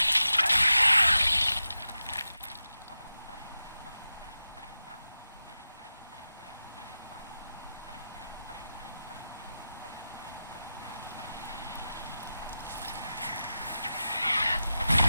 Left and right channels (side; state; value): both; inverted; correlation -0.92